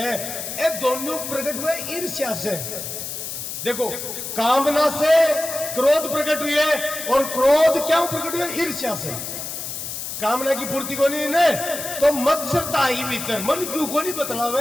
ये दोनों प्रकट हुए ईर्ष्या से। देखो कामना से क्रोध प्रकट हुई है और क्रोध क्यों प्रकट हुआ? ईर्ष्या से। कामना की पूर्ति को नहीं ने तो मत्सरता ही भीतर मन क्यों को नहीं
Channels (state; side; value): noise; left; hiss, 6 dB below the sound